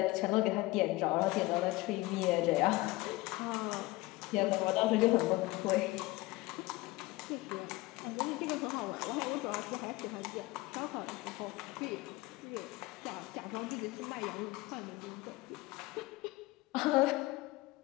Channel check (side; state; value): right; quieter; 20.5 dB